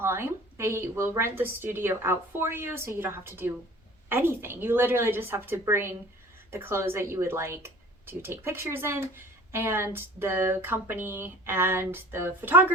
They will rent the studio out for you, so you don't have to do anything. You literally just have to bring the clothes that you would like to take pictures in, and the company and the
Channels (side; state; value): both; normal; correlation 0.46